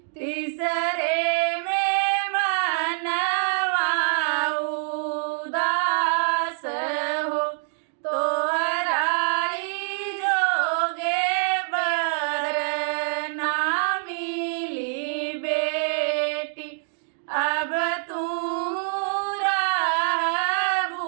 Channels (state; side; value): silent; left; digital silence